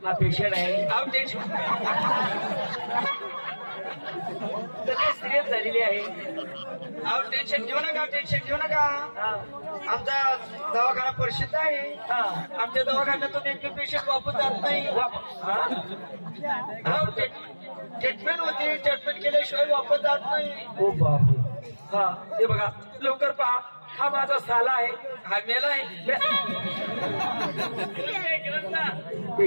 हा पेशंट आहे आउट टेन्शन सिरियस झालेली आहे आहो टेन्शन घेऊ नका टेन्शन घेऊ नका आमचा दवाखाना प्रसिद्ध आहे आमच्या दवाखान्यातून एक पेशंट वापस जात नाही ट्रीटमेंट होती ट्रीटमेंट केल्याशिवाय वापस जात नाही हो बापरे हा हे बघा लवकर पहा हा माझा साला आहे हा मेला आहे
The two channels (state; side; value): inverted; both; correlation -1.00